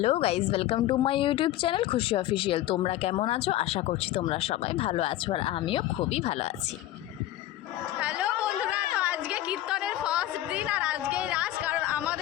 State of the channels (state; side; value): quieter; right; 14.3 dB